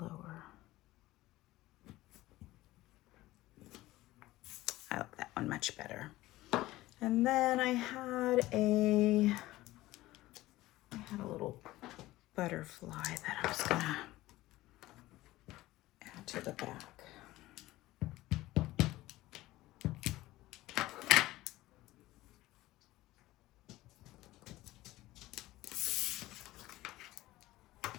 I like that one much better. And then I had a little butterfly that I was gonna add to the back.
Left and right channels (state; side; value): quieter; right; 17.3 dB